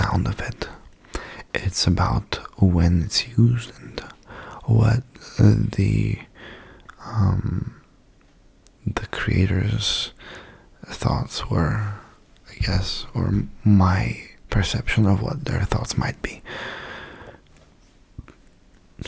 of it. It's about when it's used and what the creator's thoughts were, I guess, or my perception of what their thoughts might be.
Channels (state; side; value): identical; both; correlation 1.00